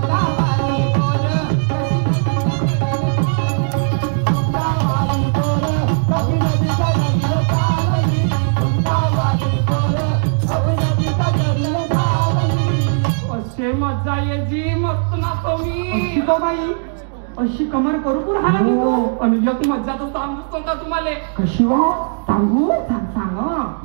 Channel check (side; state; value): left; silent; digital silence